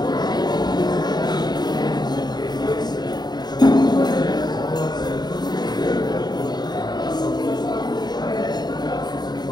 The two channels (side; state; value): right; late; 0.20 ms